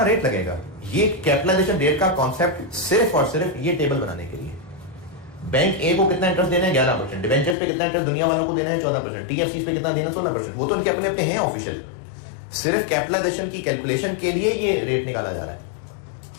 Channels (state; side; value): drops out; right; at 7.6 s